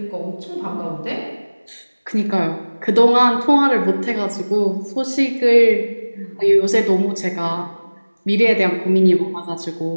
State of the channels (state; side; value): inverted; both; correlation -1.00